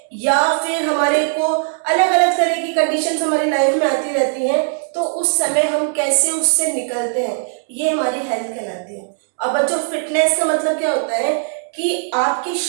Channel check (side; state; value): left; silent; digital silence